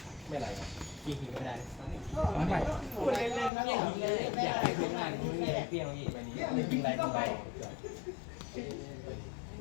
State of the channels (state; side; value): drops out; right; at 3.5 s